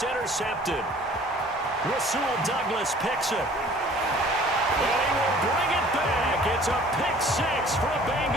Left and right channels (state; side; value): normal; both; correlation 0.51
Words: intercepted. Rasul Douglas picks it. And he will bring it back. It's a pick six for a